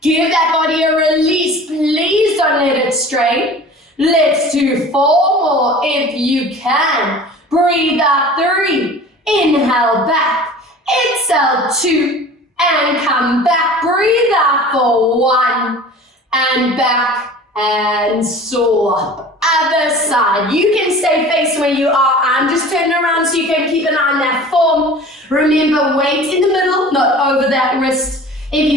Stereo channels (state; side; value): normal; both; correlation 0.42